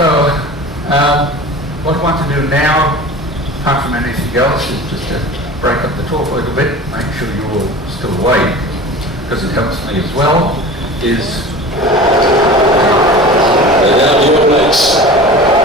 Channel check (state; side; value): normal; both; correlation 0.37